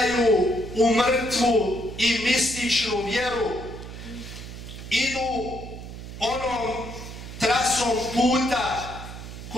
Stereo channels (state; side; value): noise; right; hum, 11 dB below the sound